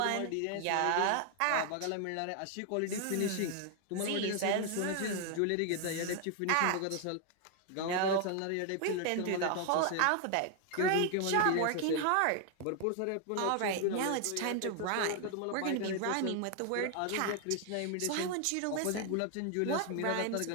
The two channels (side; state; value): both; different; correlation 0.00